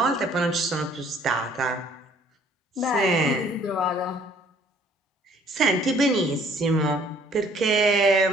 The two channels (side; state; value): both; normal; correlation 0.58